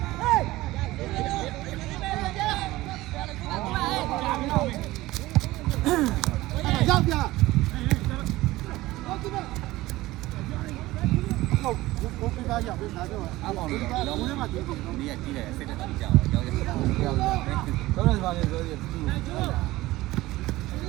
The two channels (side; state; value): left; quieter; 18.0 dB